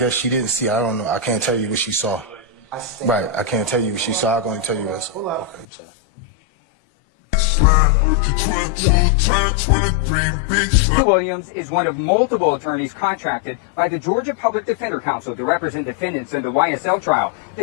she didn't see. I don't know. I can't tell you what she saw. Right. I can't tell you what she saw. I'm going to tell you what. Okay. Williams is one of multiple attorneys contracted by the Georgia Public Defender Council to represent defendants in the YSL trial.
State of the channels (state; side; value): drops out; right; at 5.7 s